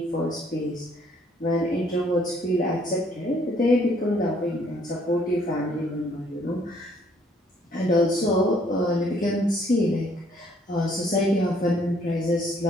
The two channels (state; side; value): normal; both; correlation 0.64